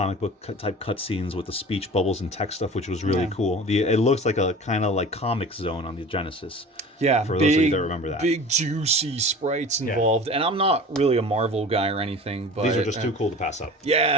book type cutscenes with the speech bubbles and text stuff, which was really cool. It looks like a kind of like Comic Zone on the Genesis. Yeah, for those of you that remember that. Big juicy sprites involved, and I'm not really a Marvel guy or anything, but These are just too cool to pass up.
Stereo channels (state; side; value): normal; both; correlation 0.39